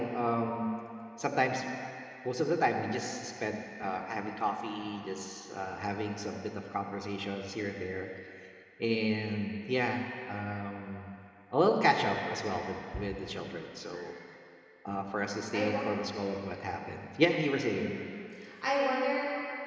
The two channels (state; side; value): identical; both; correlation 1.00